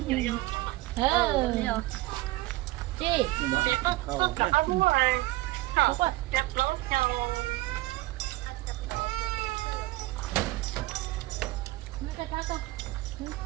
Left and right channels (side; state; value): left; quieter; 18.8 dB